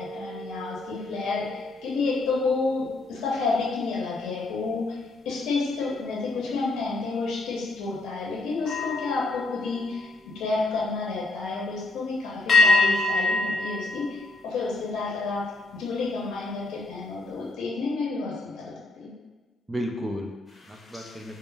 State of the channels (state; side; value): quieter; right; 3.0 dB